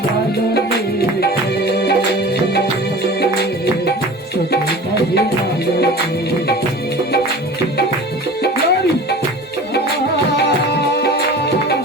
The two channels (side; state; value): both; normal; correlation 0.39